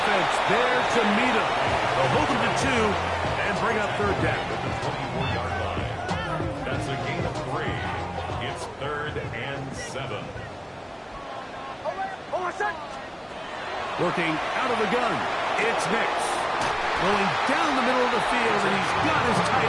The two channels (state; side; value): identical; both; correlation 1.00